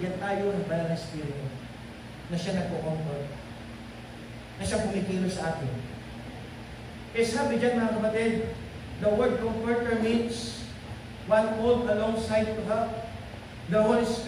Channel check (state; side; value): identical; both; correlation 1.00